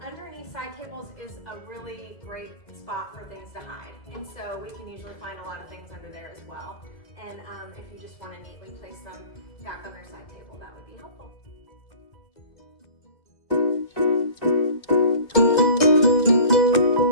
underneath side tables is a really great spot for things to hide. And so we can usually find a lot of things under there as well. And if you just want to neatly place them back on their side table, that would be helpful.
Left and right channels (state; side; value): late; right; 2.0 ms